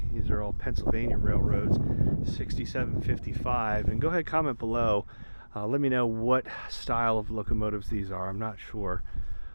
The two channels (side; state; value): both; inverted; correlation -1.00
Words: These are all Pennsylvania railroads. 6755. And go ahead, comment below. Let me know what style of locomotives these are. I'm not sure.